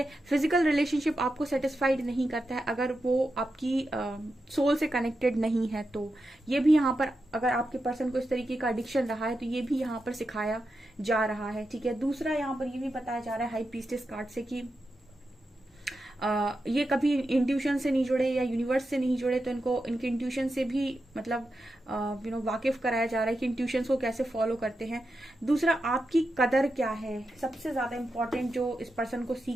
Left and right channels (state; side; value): normal; both; correlation 0.88